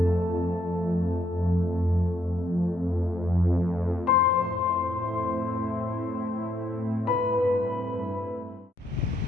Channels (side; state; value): both; normal; correlation 0.74